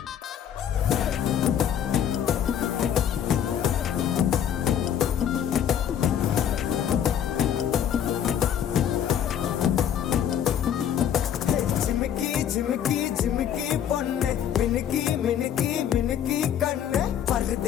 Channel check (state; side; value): quieter; right; 9.4 dB